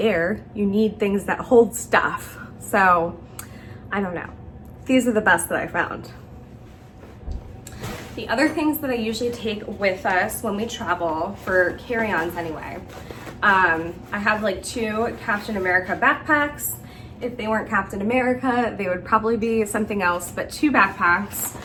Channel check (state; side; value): identical; both; correlation 1.00